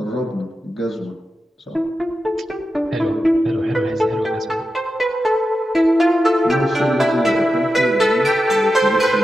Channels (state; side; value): normal; both; correlation 0.91